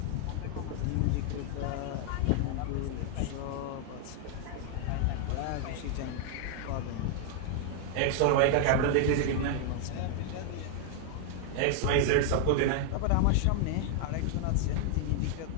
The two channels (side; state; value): both; different; correlation 0.00